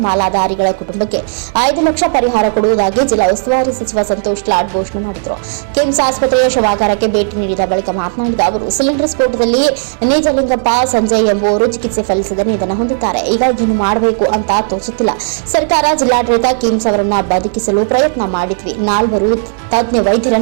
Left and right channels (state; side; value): silent; left; digital silence